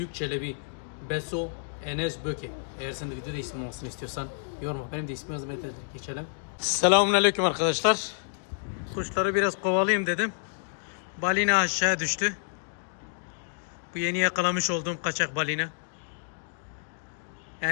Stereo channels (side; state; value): right; silent; digital silence